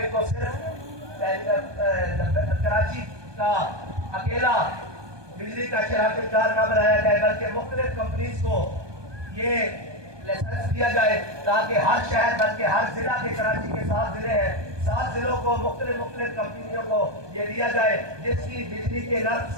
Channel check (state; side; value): late; left; 1.2 ms